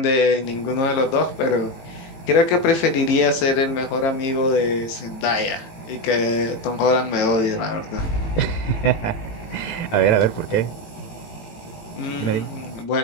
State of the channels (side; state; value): right; late; 18 ms